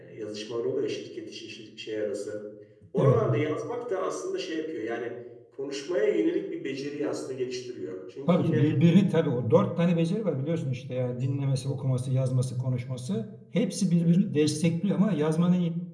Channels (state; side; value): identical; both; correlation 1.00